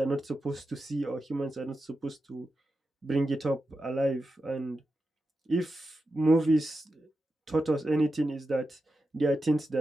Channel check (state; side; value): normal; both; correlation 0.90